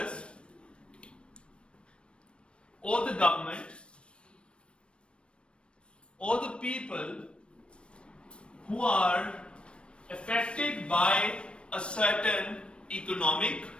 or the government or the people who are affected by a certain economic,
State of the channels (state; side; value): late; right; 0.058 ms